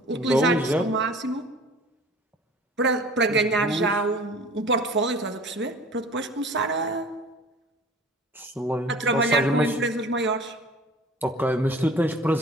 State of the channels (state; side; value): normal; both; correlation 0.45